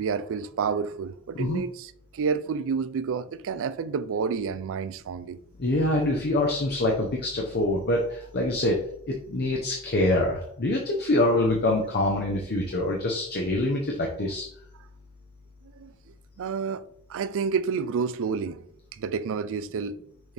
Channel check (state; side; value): normal; both; correlation 0.22